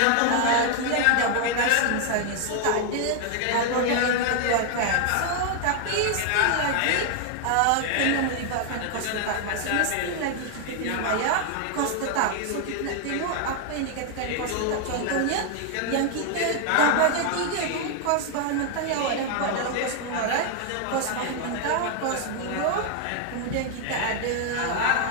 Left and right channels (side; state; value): both; different; correlation 0.00